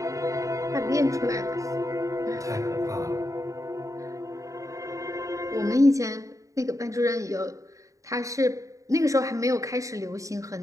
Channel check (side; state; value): left; late; 0.16 ms